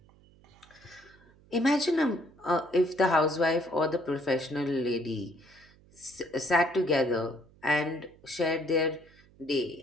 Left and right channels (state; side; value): noise; right; hum, 28 dB below the sound